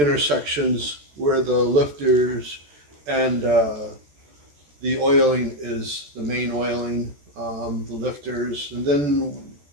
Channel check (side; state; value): left; late; 14 ms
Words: where the lifters and the oiling is the main oiling, the lifters, and then